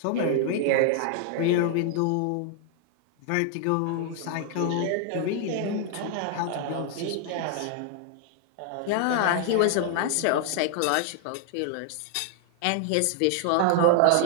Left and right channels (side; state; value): both; different; correlation 0.00